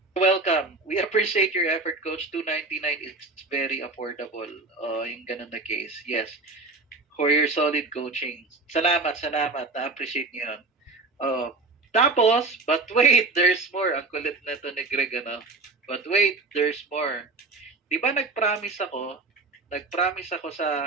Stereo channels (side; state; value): left; quieter; 3.5 dB